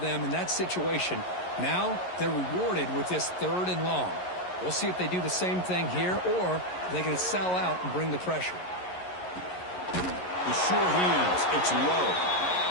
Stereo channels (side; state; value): right; late; 11 ms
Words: in that situation. Now they're rewarded with this 3rd and long. We'll see if they do the same thing here, or they're going to sell out and bring the pressure. The sure hands. It's low.